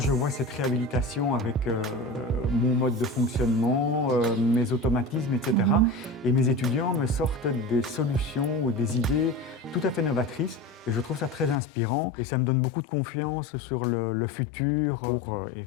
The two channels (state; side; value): drops out; right; at 11.6 s